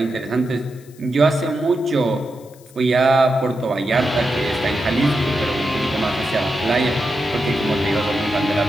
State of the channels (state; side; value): noise; left; hiss, 26 dB below the sound